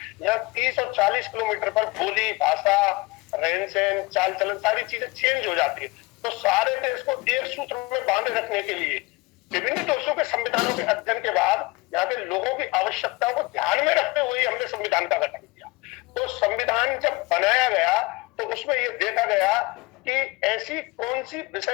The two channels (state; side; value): quieter; right; 23.3 dB